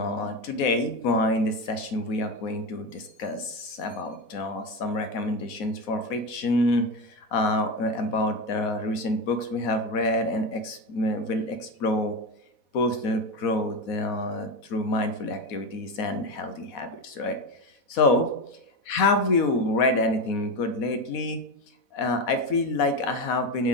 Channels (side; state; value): right; late; 4.1 ms